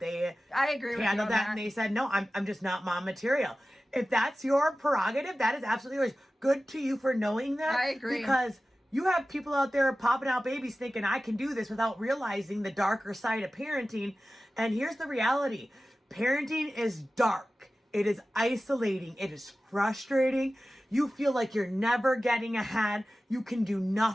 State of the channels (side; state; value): both; normal; correlation 0.95